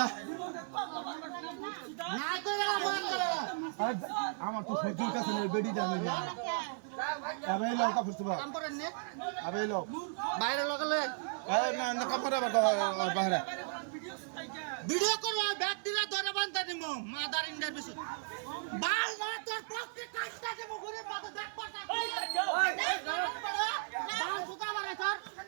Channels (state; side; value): silent; left; digital silence